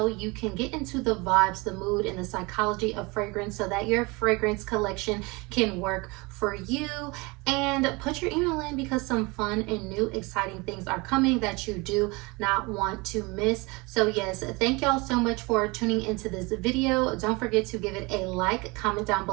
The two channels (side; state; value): left; quieter; 25.9 dB